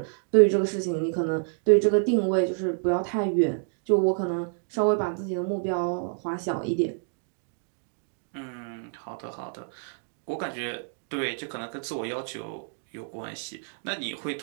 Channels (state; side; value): silent; left; digital silence